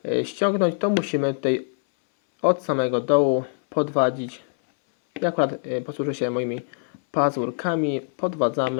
ściągnąć, to musimy tutaj od samego dołu podwadzić. Ja akurat posłużę się moimi pazurkami.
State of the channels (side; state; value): right; silent; 63 dB below the other